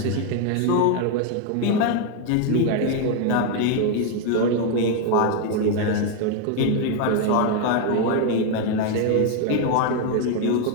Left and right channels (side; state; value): both; different; correlation 0.01